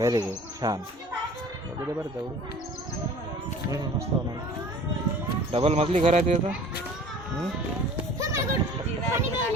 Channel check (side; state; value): both; normal; correlation 0.46